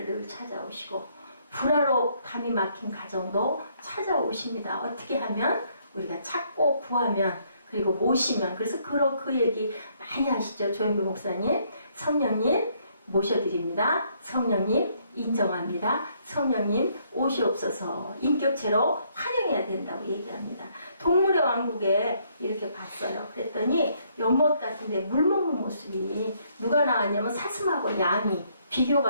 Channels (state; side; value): inverted; both; correlation -0.69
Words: 늘 찾아오시고 불화로 담이 막힌 가정도 찾아오십니다. 어떻게 하면? 우리가 찾고 구하면 그리고 모시면. 그래서 그 얘기 많이 하시죠. 조현규 목사님. 성령님 모셔드립니다. 성령님 인정합니다. 성령님 오시옵소서. 인격체로 환영해야 된다고 얘기합니다. 동물의 왕국에 이렇게 갔어요. 그랬더니 연못 같은데 물 먹는 모습이 누가 나왔냐면 사슴하고 양이